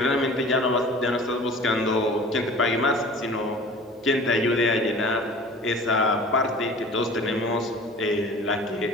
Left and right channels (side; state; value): both; normal; correlation 0.43